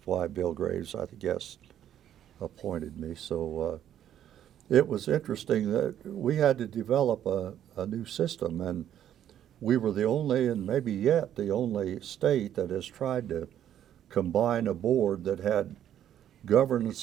why Bill Graves, I guess, appointed me. So it was interesting that we had to develop a new system, and we were the only, and maybe yet the only state that has tried to combine a board that had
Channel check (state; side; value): quieter; left; 10.7 dB